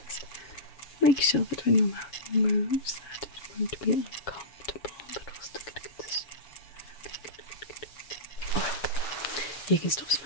just make sure that when your mouth moves, that it won't be uncomfortable, but we'll still get a good You can stop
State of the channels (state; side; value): late; right; 7.2 ms